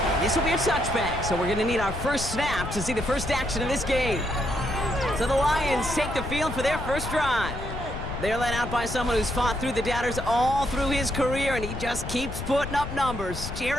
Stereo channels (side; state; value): left; noise; rumble, 7 dB below the sound